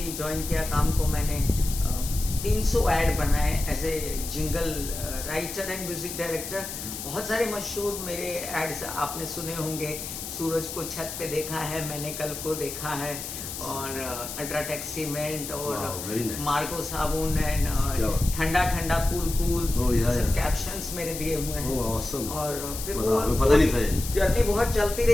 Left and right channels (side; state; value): left; noise; hiss, 8 dB below the sound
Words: ज्वाइन किया काम को मैंने। 300 ऐड बनाए as a jingle writer and music director. बहुत सारे मशहूर मेरे एड्स आपने सुने होंगे। सूरज को छत पे देखा है मैंने, कल को देखा है, और अल्ट्राटेक सीमेंट, और मार्को साबुन, एंड ठंडा ठंडा कूल कूल, सब कैप्शंस मेरे दिए हुए हैं। और फिर वो जर्नी बहुत चलती